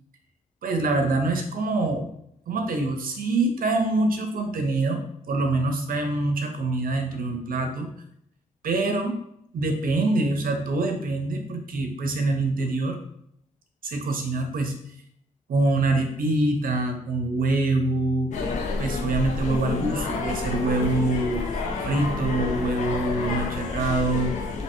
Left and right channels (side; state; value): both; normal; correlation 0.62